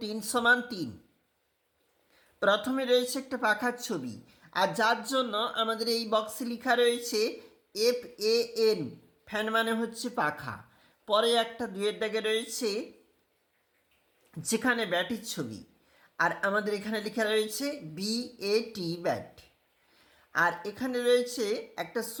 3 সমান 3। প্রথমে রয়েছে একটা পাখার ছবি, আর যার জন্য আমাদের এই বক্সে লেখা রয়েছে FAN, ফ্যান মানে হচ্ছে পাখা। পরে একটা 2-এর দাগে রয়েছে যেখানে ব্যাটির ছবি, আর আমাদের এখানে লেখা রয়েছে BAT, ব্যাট। আর এখানে রয়েছে একটা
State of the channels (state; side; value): identical; both; correlation 1.00